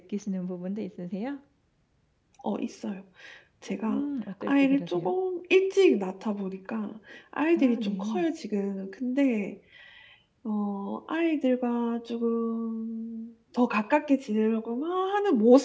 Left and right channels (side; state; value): both; identical; correlation 1.00